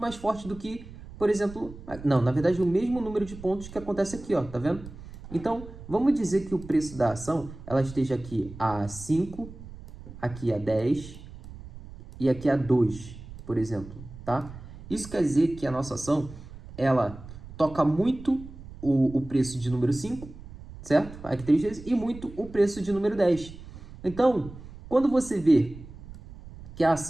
mais forte do que, por exemplo, não, na verdade, o mesmo número de pontos que acontece aqui, ó, tá vendo? Então, vamos dizer que o preço da ação, ela esteja aqui a 5, aqui a 10 e aqui a 2, por exemplo, tá? Isso quer dizer que a nossa ação, ela toca muito o preço de número 5, certo? Aqui 3 vezes, e muito o preço de número 10. Então, quando você vê que a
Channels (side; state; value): right; noise; rumble, 15 dB below the sound